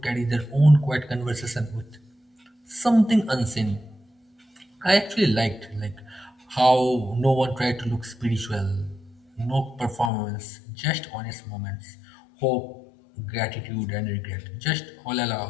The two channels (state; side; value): drops out; right; at 10.1 s